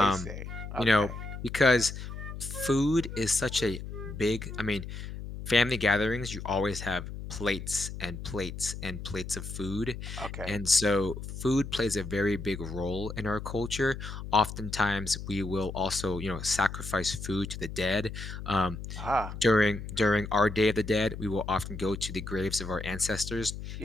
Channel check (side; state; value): left; noise; hum, 9 dB below the sound